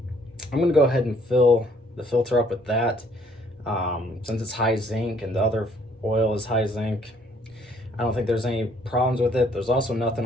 I'm gonna go ahead and fill the filter up with that. Since it's high zinc and the other oil is high zinc, I don't think there's any problems with it. There's also nothing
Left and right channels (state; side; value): normal; both; correlation 0.63